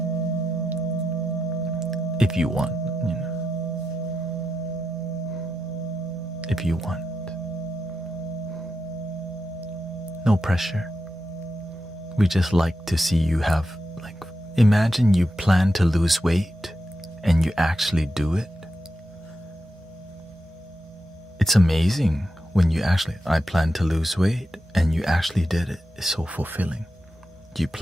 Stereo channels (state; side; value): normal; both; correlation 0.88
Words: If you want, if you want. No pressure. We just like to see you have, imagine you plan to lose weight and you actually do it. It's amazing when I plan to lose weight and you actually did it. It's so fulfilling. You